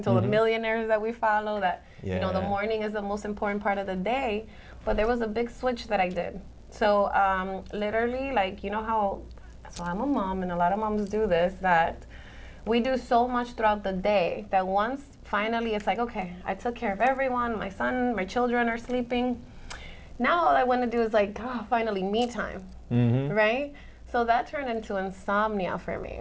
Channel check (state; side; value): identical; both; correlation 1.00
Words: to, the millionaires that we follow, that, you know, the morning is the most important part of the day. But there was a big switch that I did. So literally, like, you know how, so I'm a mom and a lot of moms do this, that we do so much throughout the day that once finally it's like, okay, I took care of everyone, my son, my children are sleeping. Now all I want to do is like, finally me time, right? So that turned into insomnia for me.